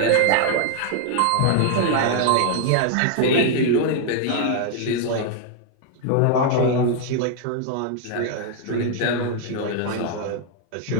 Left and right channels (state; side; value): different; both; correlation 0.00